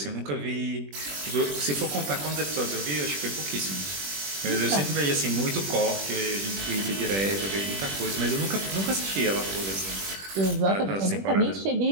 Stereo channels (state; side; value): late; left; 21 ms